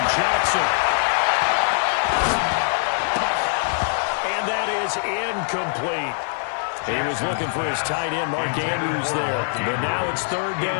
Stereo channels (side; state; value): right; silent; 56 dB below the other